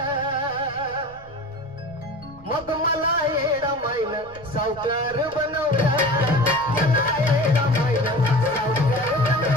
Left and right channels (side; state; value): right; noise; rumble, 23 dB below the sound